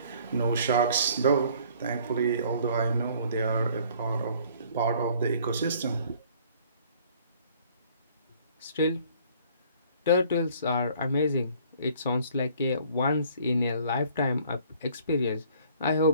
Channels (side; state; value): both; inverted; correlation -0.57